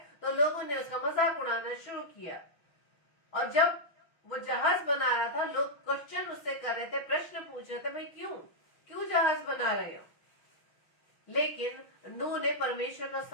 तो लोगों ने उसका मजाक उड़ाना शुरू किया। और जब वो जहाज बना रहा था, लोग क्वेश्चन उससे कर रहे थे, प्रश्न पूछ रहे थे, भाई क्यों जहाज बना रहे हो? लेकिन नूह ने परमेश्वर का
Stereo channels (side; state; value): right; late; 6.0 ms